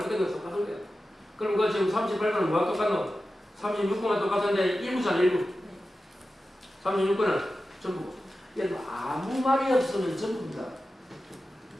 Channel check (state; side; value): normal; both; correlation 0.93